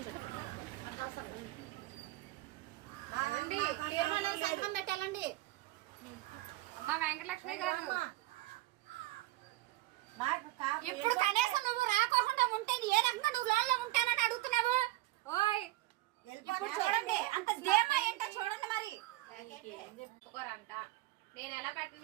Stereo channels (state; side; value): quieter; left; 18.1 dB